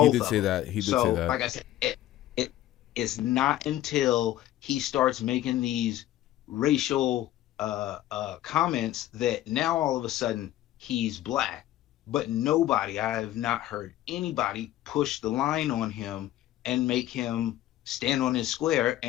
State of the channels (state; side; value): quieter; right; 13.9 dB